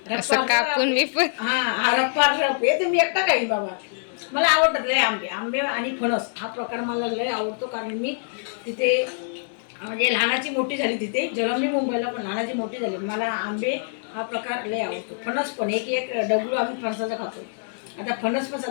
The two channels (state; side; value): silent; right; digital silence